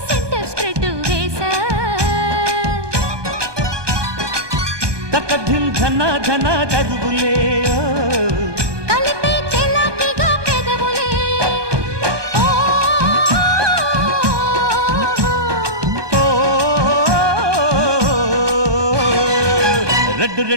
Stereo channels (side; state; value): left; late; 1.2 ms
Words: సెంటర్ స్ప్రెడ్ వేసా తకధిం ధన ధన దరువులే కలిపే చెలాకిగా పెదవులే రెడ్డు